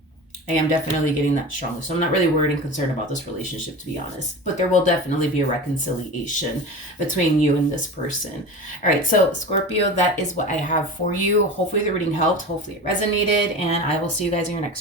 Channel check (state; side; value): normal; both; correlation 0.31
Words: I am definitely getting that strongly. So I'm not really worried and concerned about this relationship, to be honest. But there will definitely be a reconciliation between you and this person. All right, so Scorpio, that is what I have for you. Hopefully the reading helped. Hopefully it resonated. And I will see you guys in your